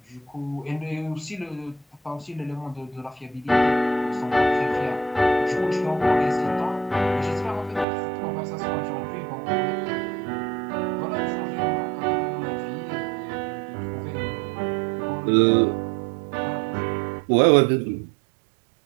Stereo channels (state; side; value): drops out; left; at 7.9 s